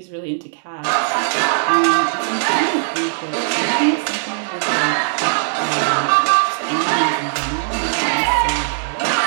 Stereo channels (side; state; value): left; silent; digital silence